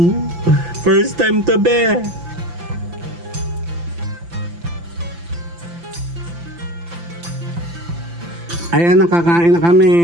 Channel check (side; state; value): left; late; 5.9 ms